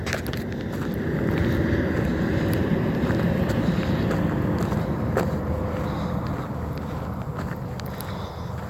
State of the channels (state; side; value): identical; both; correlation 1.00